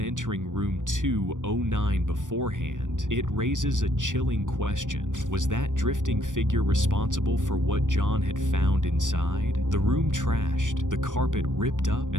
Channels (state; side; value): late; left; 0.87 ms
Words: entering room 209 beforehand, it raises a chilling question. Was that drifting figure responsible for what John had found inside? The room trashed, the carpet ripped up,